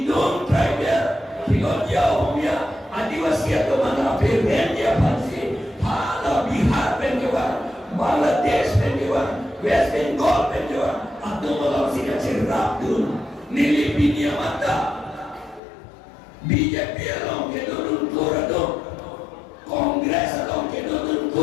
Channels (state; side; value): drops out; right; at 15.6 s